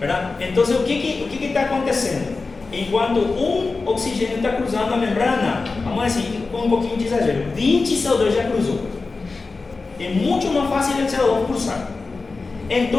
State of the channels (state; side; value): quieter; right; 4.0 dB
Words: Entonces, o que está acontecendo? Enquanto um oxigênio está cruzando a membrana, vamos dizer, com um pouquinho de exagero, 20 CO2 já cruzou. É muito mais fácil o CO2 cruzar.